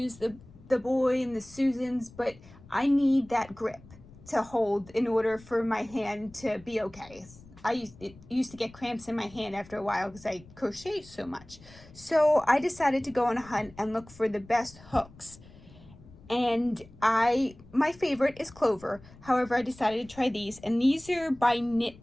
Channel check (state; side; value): noise; left; rumble, 22 dB below the sound